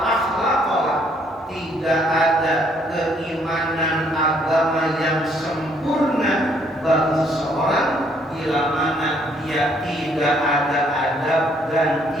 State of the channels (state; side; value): normal; both; correlation 0.67